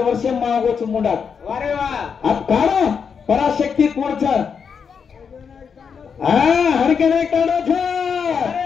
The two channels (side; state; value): right; quieter; 6.4 dB